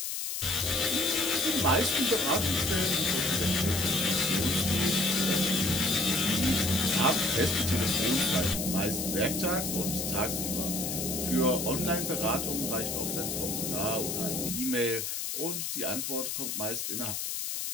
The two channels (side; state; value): left; noise; hiss, 3 dB below the sound